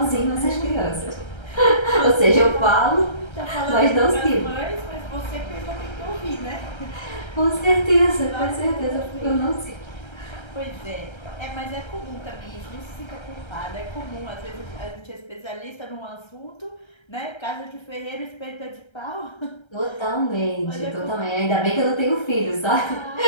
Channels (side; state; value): right; late; 1.3 ms